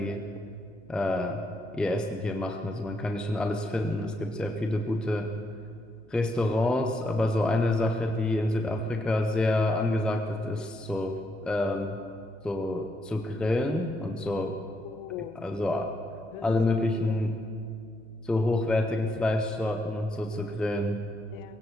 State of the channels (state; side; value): noise; left; hum, 29 dB below the sound